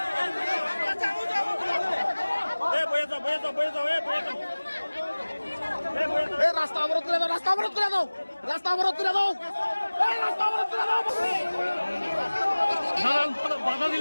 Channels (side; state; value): both; inverted; correlation -1.00